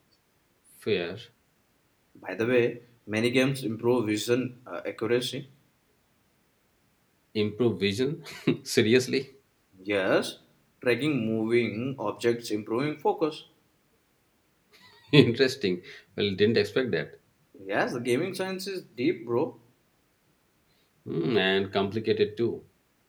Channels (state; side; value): identical; both; correlation 1.00